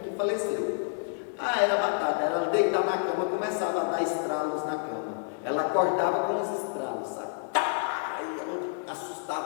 que faleceu. Era batata. Ela deitava na cama, começava a dar estralos na cama. Ela acordava com os estralos, sabe? Aí ela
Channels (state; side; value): silent; right; 59 dB below the other